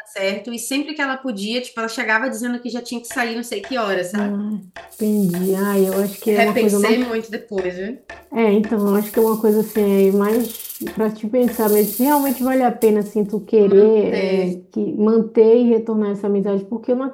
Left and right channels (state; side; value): identical; both; correlation 1.00